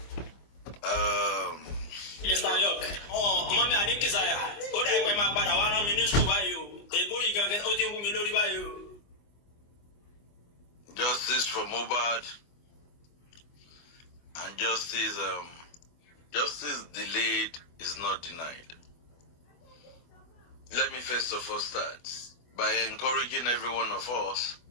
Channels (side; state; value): right; late; 24 ms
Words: Mr. York, mommy, I need to say, what I wear my father, one minister, why you? The boy you can get out of me, why you? Justice for Muhbad and justice delayed is not denied. Let me first of all start by encouraging every one of us